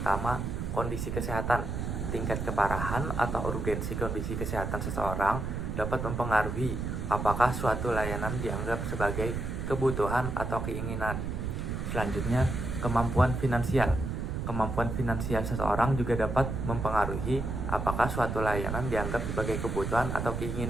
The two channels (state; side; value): noise; right; rumble, 3 dB below the sound